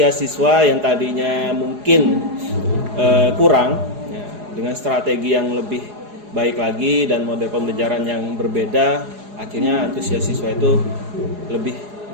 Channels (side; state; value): left; late; 4.8 ms